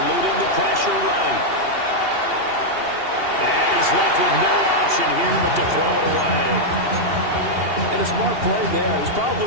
the pressure right. And he's left with no option here but to throw it away. And a smart play there. He's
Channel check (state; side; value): late; left; 2.8 ms